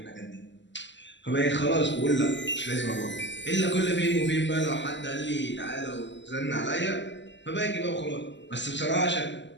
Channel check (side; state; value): right; late; 0.53 ms